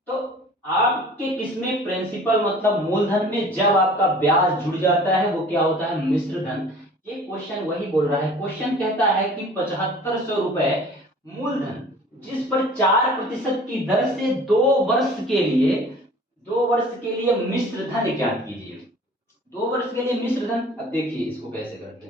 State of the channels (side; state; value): both; normal; correlation 0.47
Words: तो आपके किसमें, प्रिंसिपल मतलब मूलधन में जब आपका ब्याज जुड़ जाता है वो क्या होता है, मिश्र धन। ये क्वेश्चन वही बोल रहा है। क्वेश्चन कहता है कि 7500 रुपए मूलधन जिस पर 4% की दर से 2 वर्ष के लिए मिश्र धन ज्ञात कीजिए। 2 वर्ष के लिए मिश्र धन, अब देखिए इसको कैसे करते